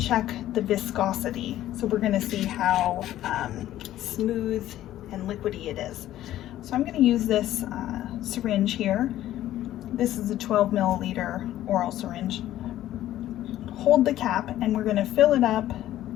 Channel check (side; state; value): right; quieter; 13.4 dB